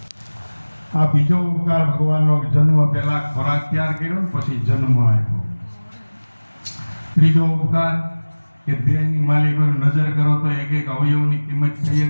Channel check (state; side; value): inverted; both; correlation -1.00